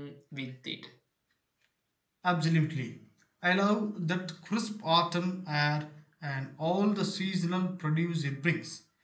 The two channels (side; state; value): both; identical; correlation 1.00